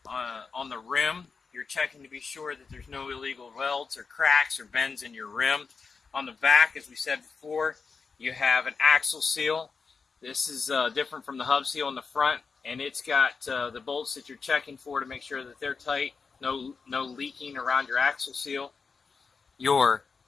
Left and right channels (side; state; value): right; quieter; 5.0 dB